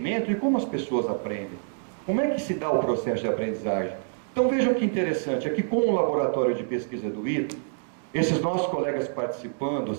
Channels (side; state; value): left; silent; digital silence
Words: de como as pessoas aprendem. Como é que se dá o processo de aprendizagem? Então vejam que interessante, aqui com o laboratório de pesquisa do ITA, esses nossos colegas participando,